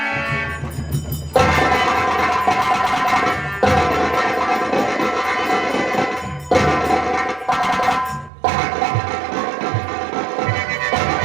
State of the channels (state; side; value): drops out; left; at 8.3 s